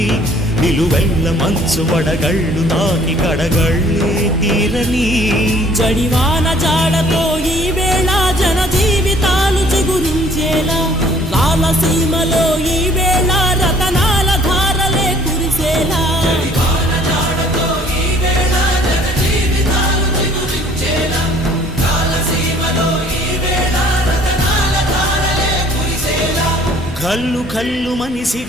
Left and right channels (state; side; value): normal; both; correlation 0.57